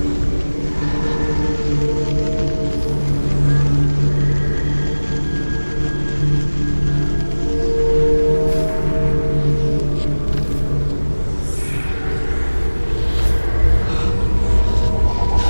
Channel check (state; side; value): inverted; both; correlation -1.00